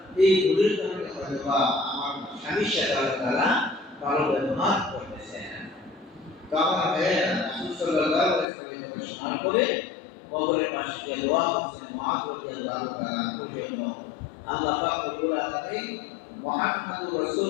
এই ভুলের কারণে হয়তো বা আমার স্বামীর সাথে আল্লাহ তাআলা ভালো ব্যবহার করতেছেন। তো আমার ভাইয়েরা, রাসূল সাল্লাল্লাহু আলাইহি ওয়াসাল্লাম শোনার পরে কবরের পাশে গিয়ে দোয়া করছেন মুআয রাদিয়াল্লাহু তাআলা পর্যন্ত। আল্লাহ পাক রব্বুল আলামিন মুহাম্মদুর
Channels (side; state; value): right; drops out; at 8.5 s